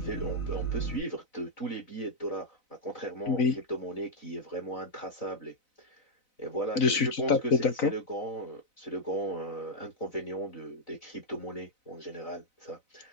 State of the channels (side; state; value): right; late; 4.0 ms